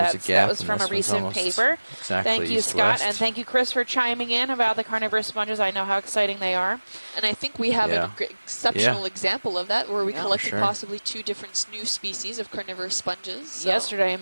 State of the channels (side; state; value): both; inverted; correlation -1.00